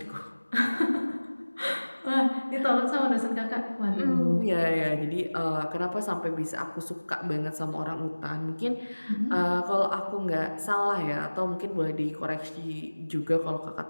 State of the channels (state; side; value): inverted; both; correlation -1.00